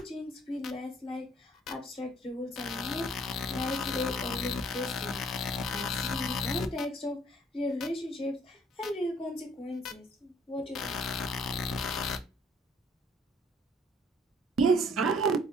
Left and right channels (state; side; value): normal; both; correlation 0.60